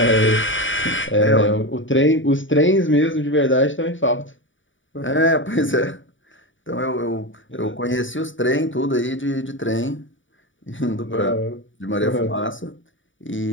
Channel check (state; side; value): late; right; 0.56 ms